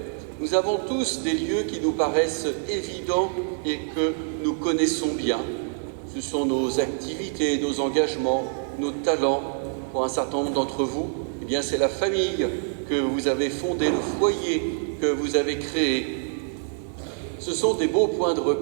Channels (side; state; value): left; silent; 61 dB below the other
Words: Nous avons tous des lieux qui nous paraissent évidents et que nous connaissons bien. Ce sont nos activités, nos engagements, nos talents. Pour un certain nombre d'entre vous, eh bien, c'est la famille que vous avez fondée, le foyer que vous avez créé. Ce sont des beaux points de